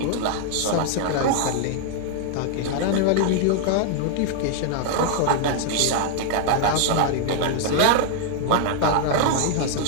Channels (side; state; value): both; different; correlation 0.00